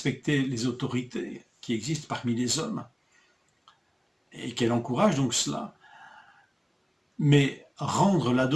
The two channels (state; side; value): identical; both; correlation 1.00